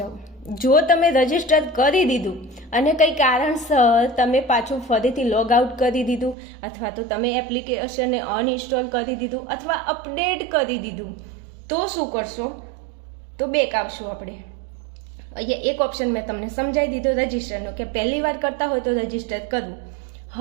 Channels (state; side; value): drops out; left; at 6.4 s